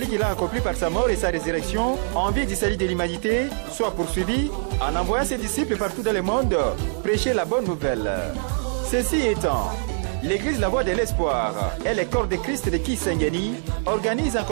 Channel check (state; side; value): silent; left; 63 dB below the other